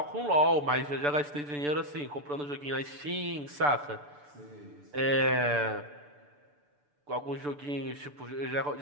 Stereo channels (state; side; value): late; left; 6.9 ms